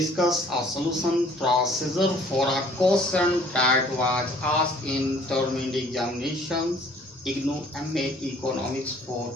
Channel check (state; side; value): normal; both; correlation 0.56